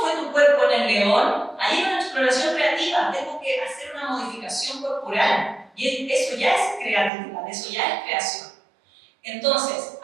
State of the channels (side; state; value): left; drops out; at 7.1 s